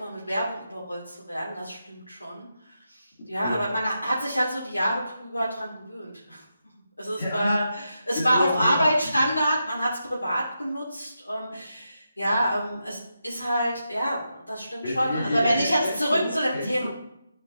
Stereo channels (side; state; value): both; inverted; correlation -0.86